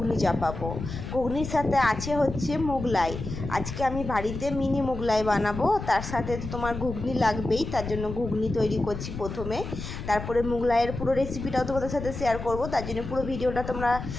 চাপাবো। ঘুগনির সাথে আছে হচ্ছে মোগলাই। আজকে আমি বাড়িতে মিনি মোগলাই বানাবো, তার সাথে তো তোমার ঘুগনি লাগবেই, তার জন্য ঘুগনি তৈরি করছি প্রথমে। তারপরে মোগলাইয়ের পুরো রেসিপিটাও তোমাদের সাথে শেয়ার করব, তার জন্য পুরো ভিডিওটা তোমরা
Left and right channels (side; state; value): left; noise; rumble, 8 dB below the sound